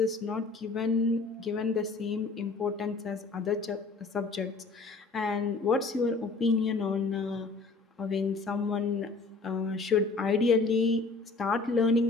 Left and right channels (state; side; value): quieter; right; 3.9 dB